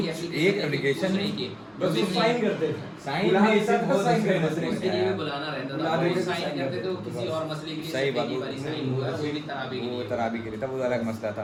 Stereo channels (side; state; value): both; identical; correlation 1.00